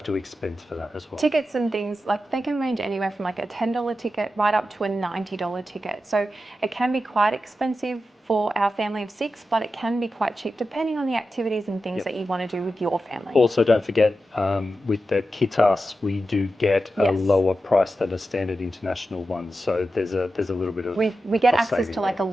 to expense for that as well. Tickets and things, like they can range anywhere from like a $10 ticket right up to a $90 ticket. So it can be quite expensive for our family of 6, but it can be quite cheap depending on the activities and things that you want to do with your family. Also, don't forget, with the Kitas, we do get a lower price than a standard international one. So there's a little bit of we get access to like a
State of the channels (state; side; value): normal; both; correlation 0.91